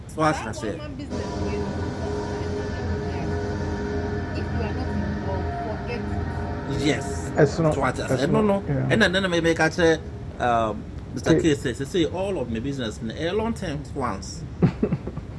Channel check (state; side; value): identical; both; correlation 1.00